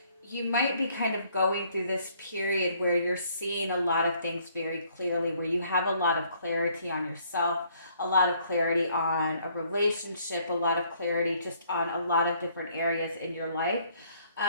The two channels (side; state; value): both; inverted; correlation -0.64